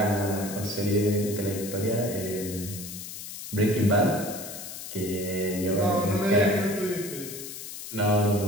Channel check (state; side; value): noise; left; hiss, 10 dB below the sound